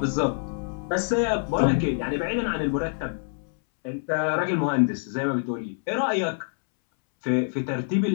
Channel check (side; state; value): right; silent; 61 dB below the other